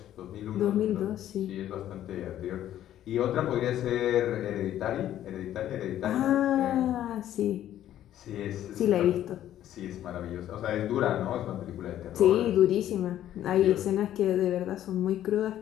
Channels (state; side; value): quieter; right; 12.0 dB